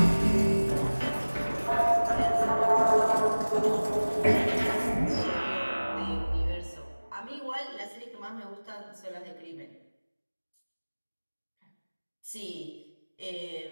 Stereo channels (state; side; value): inverted; both; correlation -1.00